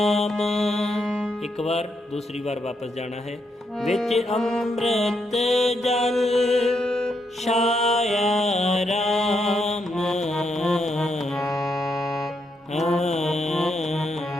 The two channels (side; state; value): both; normal; correlation 0.79